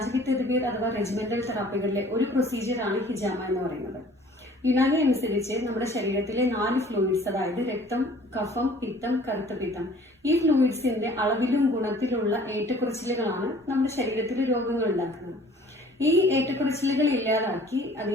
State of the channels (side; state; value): both; normal; correlation 0.52